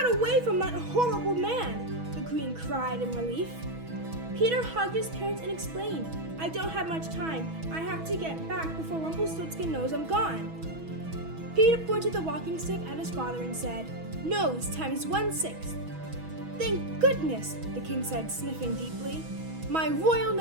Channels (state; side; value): late; left; 6.2 ms